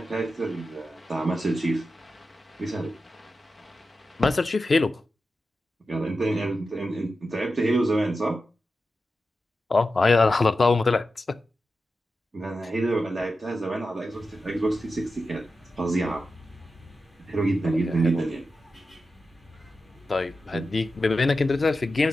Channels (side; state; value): both; normal; correlation 0.91